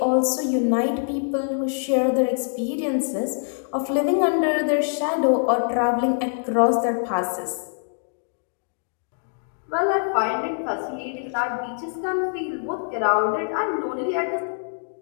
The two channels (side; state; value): right; silent; digital silence